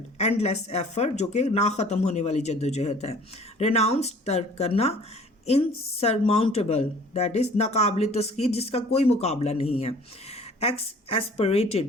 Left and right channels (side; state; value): both; normal; correlation 0.51